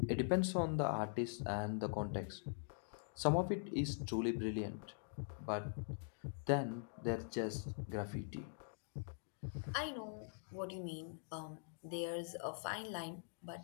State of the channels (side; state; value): right; silent; digital silence